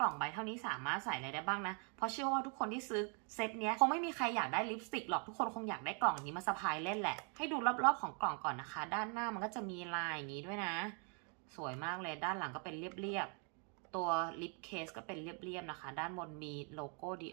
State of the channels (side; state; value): left; quieter; 38.2 dB